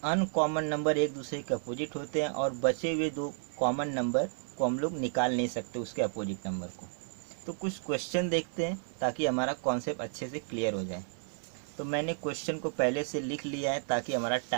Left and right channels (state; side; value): silent; left; digital silence